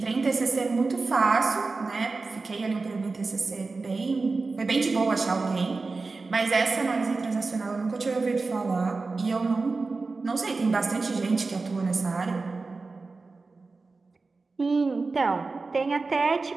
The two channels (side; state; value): left; quieter; 3.9 dB